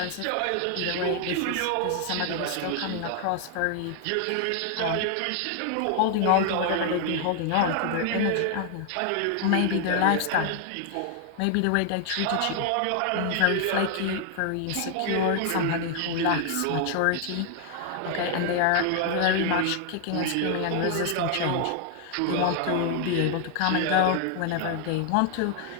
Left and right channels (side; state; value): both; different; correlation 0.00